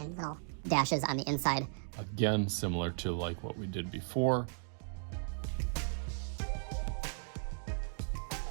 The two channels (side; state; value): left; silent; digital silence